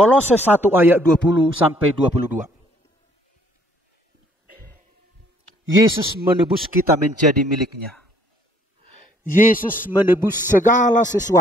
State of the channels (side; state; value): both; normal; correlation 0.63